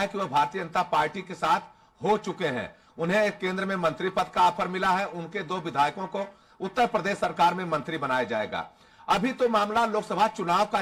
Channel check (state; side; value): identical; both; correlation 1.00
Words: कि वह भारतीय जनता पार्टी के साथ हो चुके हैं। उन्हें केंद्र में मंत्री पद का ऑफर मिला है। उनके 2 विधायकों को उत्तर प्रदेश सरकार में मंत्री बनाया जाएगा। अभी तो मामला लोकसभा चुनाव का